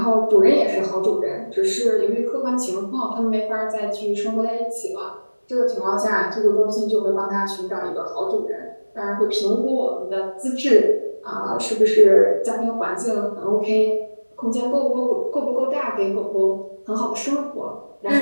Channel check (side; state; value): both; inverted; correlation -1.00